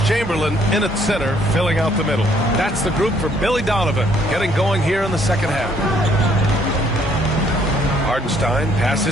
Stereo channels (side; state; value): both; normal; correlation 0.65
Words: Chamberlain in at center, filling out the middle. That's the group for Billy Donovan, getting going here in the second half. Hardenstein